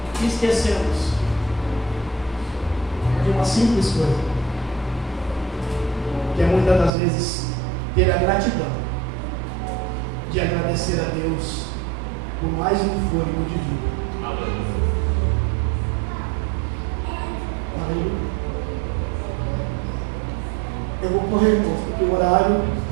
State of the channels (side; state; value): left; drops out; at 6.9 s